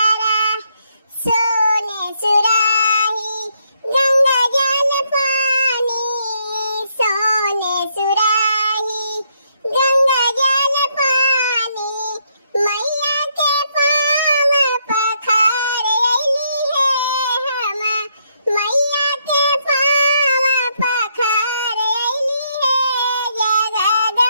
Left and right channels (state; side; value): inverted; both; correlation -0.74